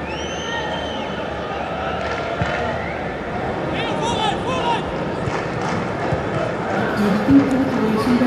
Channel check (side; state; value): both; identical; correlation 1.00